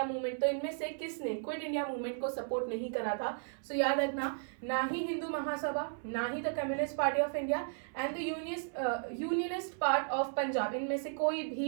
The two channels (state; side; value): silent; left; 55 dB below the other